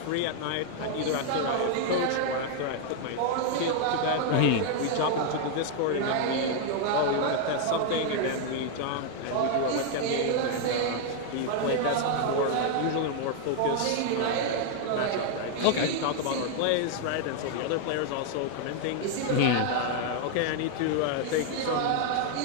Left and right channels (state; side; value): different; both; correlation 0.00